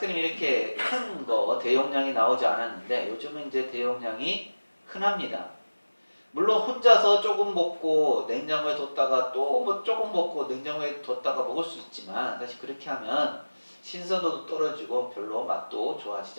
이렇게 큰 거 대용량이 나오지 않았는데 요즘은 이제 대용량이 흔합니다. 물론 혼자서 조금 먹고 냉장고에 뒀다가 또 뭐 조금 먹고 냉장고에 뒀다가 먹을 수 있지만 사실 그렇게 하면 신선도도 떨어지고 별로 맛도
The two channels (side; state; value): both; inverted; correlation -1.00